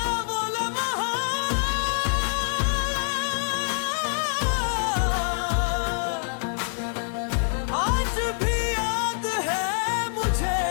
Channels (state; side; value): silent; right; 61 dB below the other